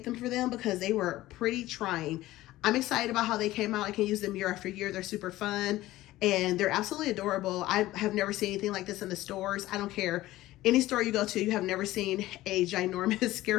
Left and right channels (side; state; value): right; quieter; 16.4 dB